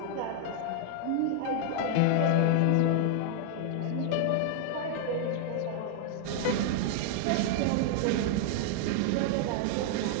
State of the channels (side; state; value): both; different; correlation 0.00